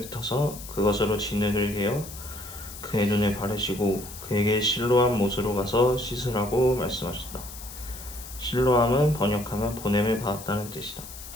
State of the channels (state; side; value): noise; left; hiss, 13 dB below the sound